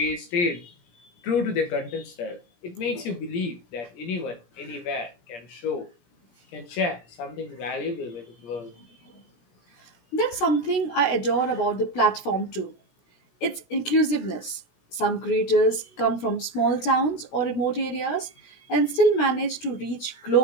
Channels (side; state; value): right; late; 17 ms